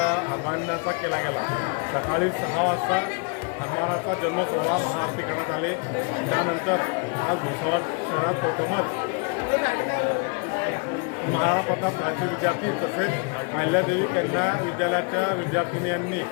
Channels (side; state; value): right; quieter; 34.4 dB